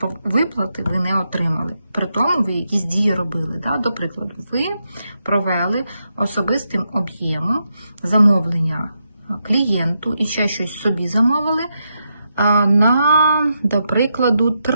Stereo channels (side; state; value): both; inverted; correlation -0.84